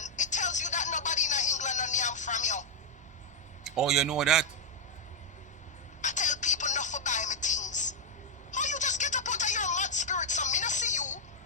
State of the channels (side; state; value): both; normal; correlation -0.01